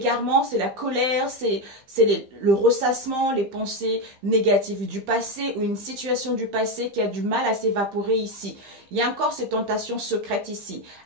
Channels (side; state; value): left; late; 15 ms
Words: c'est la colère, c'est le ressassement, les pensées négatives du passé ou une situation du passé qui a du mal à s'évaporer ici. Il y a encore ces tentations secrètes ici.